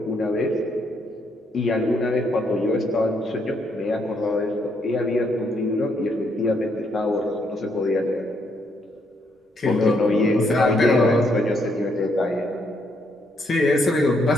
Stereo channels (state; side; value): normal; both; correlation 0.74